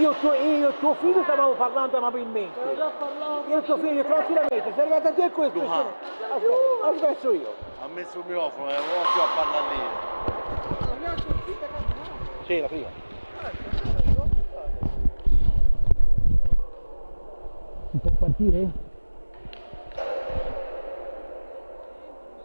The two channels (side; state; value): both; inverted; correlation -1.00